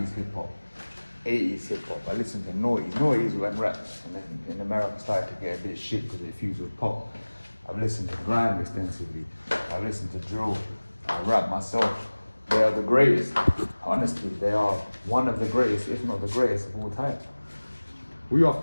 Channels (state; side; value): inverted; both; correlation -1.00